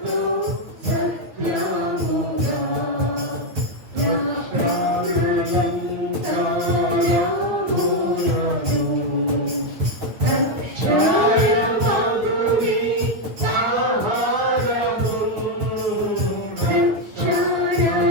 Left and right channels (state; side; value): late; left; 9.5 ms